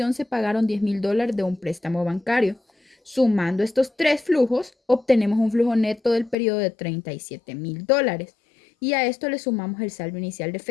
se pagaron $10,000 de un préstamo bancario. Sumando estos tres flujos, obtenemos un flujo neto del periodo de $37,000. Y a esto le sumamos el saldo inicial de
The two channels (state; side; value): drops out; right; at 6.4 s